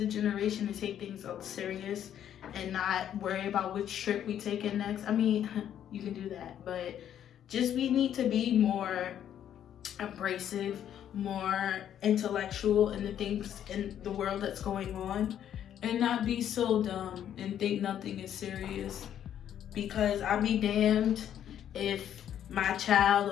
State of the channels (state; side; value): quieter; right; 10.1 dB